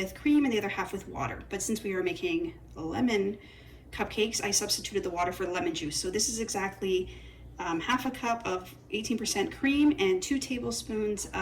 cream and the other half with water. But since we are making lemon cupcakes, I substituted the water for lemon juice. So this is exactly half a cup of 18% cream and 2 tablespoons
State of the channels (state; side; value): identical; both; correlation 1.00